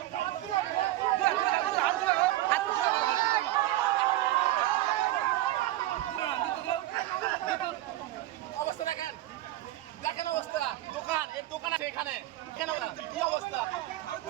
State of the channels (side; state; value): left; quieter; 15.6 dB